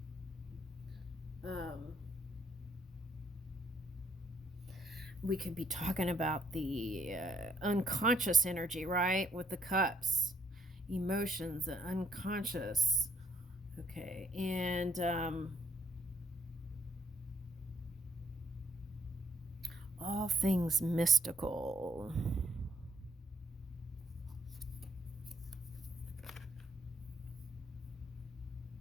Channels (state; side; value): normal; both; correlation 0.68